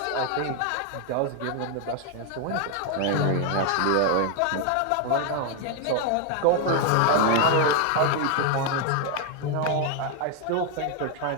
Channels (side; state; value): both; different; correlation 0.01